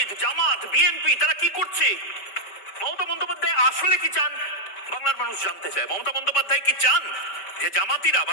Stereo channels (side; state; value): right; late; 5.1 ms